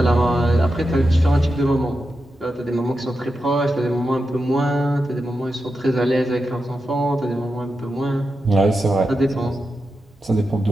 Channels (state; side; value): normal; both; correlation 0.89